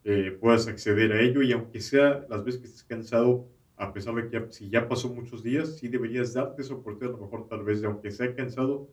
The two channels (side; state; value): both; identical; correlation 1.00